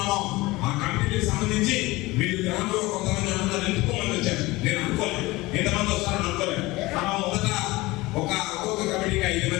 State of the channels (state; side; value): quieter; right; 20.7 dB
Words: ఆ కమిటీకి సంబంధించి మీరు గ్రామంలో కొంతమంది అందరూ ఎంచుకోమని వచ్చారు. నేను అనుకోలేదు ఎంతమంది వస్తారని అనుకోలేదు. మనం మొదట ఒక్కొక్క కమిటీకి 5